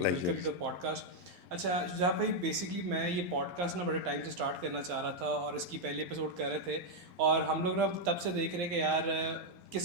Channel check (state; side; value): late; left; 11 ms